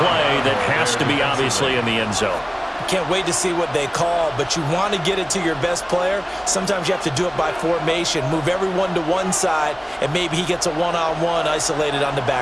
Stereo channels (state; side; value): identical; both; correlation 1.00